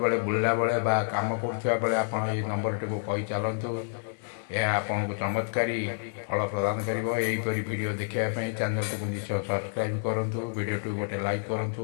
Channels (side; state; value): right; silent; 59 dB below the other